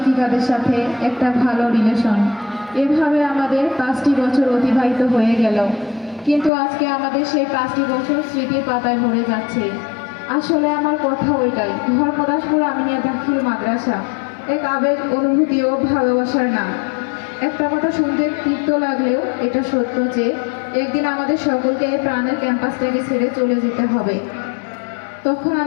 সাথে একটা ভালো রিলেশন। এভাবে আমাদের 5টি বছর অতিবাহিত হয়ে গেল, কিন্তু আজকে আমাদের সেই 5টি বছর স্মৃতির পাতায় ভরে যাচ্ছে। আসলে আমার কথা ওইটাই, ধর্মদাসপুর আমিনিয়া দাখিল মাদ্রাসা এক আবেগ, অনুভূতি ও ভালোবাসার নাম। একটা কথা শুনতে তিক্ত লাগলেও এটা সত্য যে একদিন আমাদের সকলকে এই প্রাণের ক্যাম্পাসটাকে ছেড়ে চলে যেতে হবে। তখন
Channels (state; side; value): drops out; right; at 6.5 s